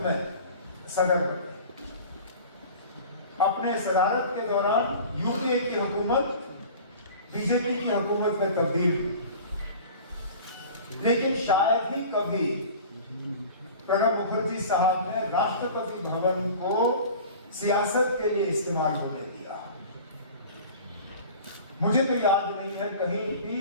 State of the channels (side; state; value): both; inverted; correlation -0.41